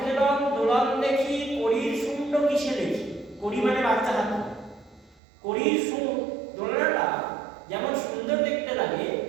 হেলন দোলন দেখি, করির শূন্য কিসে দেখি। করি মানে বাচ্চা হাতি, করির সুর দোলনাটা যেমন সুন্দর দেখতে লাগে,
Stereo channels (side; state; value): left; drops out; at 5.2 s